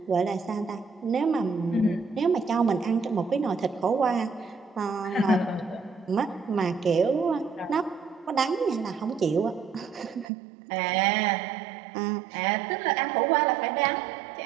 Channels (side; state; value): left; drops out; at 10.2 s